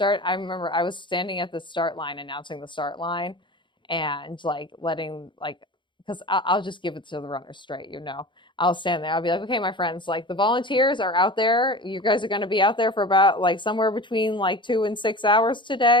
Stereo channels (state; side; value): late; right; 0.23 ms